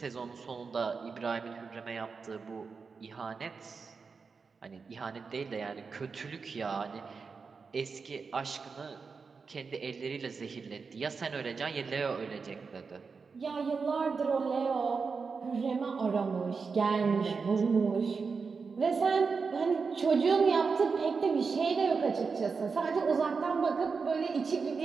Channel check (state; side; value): quieter; left; 5.0 dB